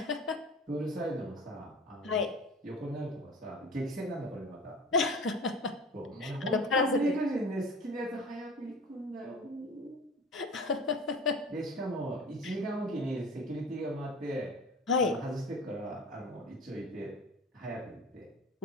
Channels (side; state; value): both; normal; correlation 0.37